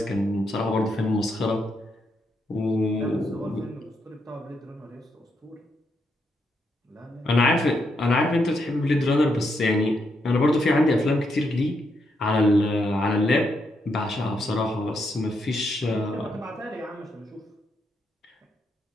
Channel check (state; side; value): normal; both; correlation 0.80